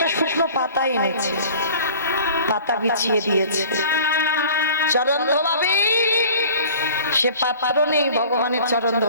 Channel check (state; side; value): inverted; both; correlation -0.45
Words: শুকনো পাতা এনেছে, পাতা বিছিয়ে দিয়েছে। চরণ ধোবাবে, সে পাত্র নেই ভগবানের চরণ